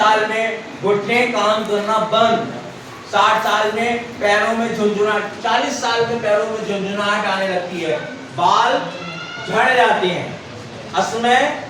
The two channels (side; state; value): both; identical; correlation 1.00